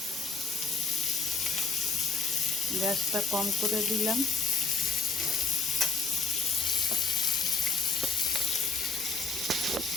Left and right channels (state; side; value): quieter; right; 4.3 dB